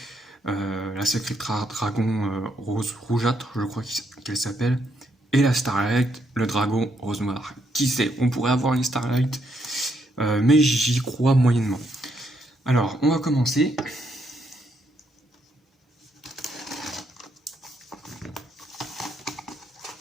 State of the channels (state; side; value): normal; both; correlation 0.75